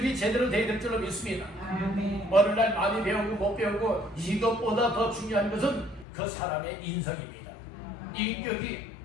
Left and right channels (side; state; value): right; drops out; at 6.1 s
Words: 제대로 돼야 될 줄로 믿습니다. 아멘. 어느 날 많이 배우고 못 배우고 이것보다 더 중요한 것은 그 사람의 인성입니다. 인격이